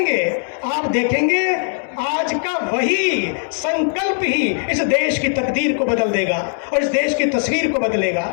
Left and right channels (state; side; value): silent; right; digital silence